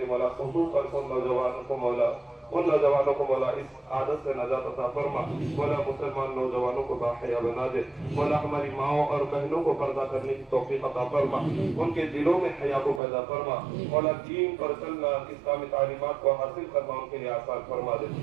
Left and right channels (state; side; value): drops out; left; at 13.0 s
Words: مولا خصوصاً ان نوجوانوں کو مولا اس عادت سے نجات عطا فرما، مولا مسلمان نوجوانوں کو باحیا بنا دے، مولا ہماری ماؤں اور بہنوں کو پردہ کرنے کی توفیق عطا فرما، ان کے دلوں میں حیا کو پیدا فرما، مولا دین پر چلنا اسلامی تعلیمات کو حاصل کرنا ان کے لیے آسان فرما دے،